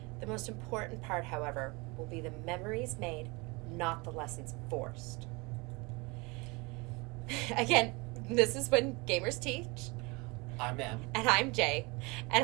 The most important part, however, will be the memories made, not the lessons forced. Again, this is When Gamers Teach. I'm Em. And I'm Jay,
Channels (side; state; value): left; quieter; 26.8 dB